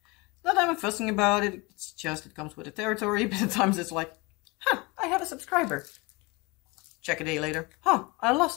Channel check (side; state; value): right; quieter; 25.8 dB